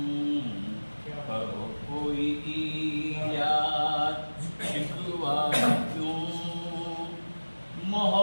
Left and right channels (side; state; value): both; inverted; correlation -1.00